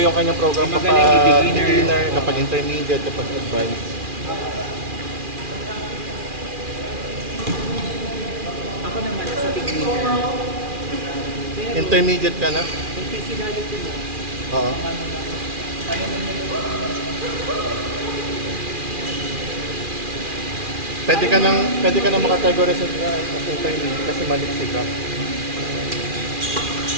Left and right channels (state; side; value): late; left; 2.4 ms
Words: kanyang program May kapag magaling, may beginner. beginner, kapag intermediate, kapag advanced. Ako naman nasa beginner. Pero, Intermediate ka na? yung physicality mo, Oo. Pwede ka nang makategorize sa intermediate kasi maliksi ka.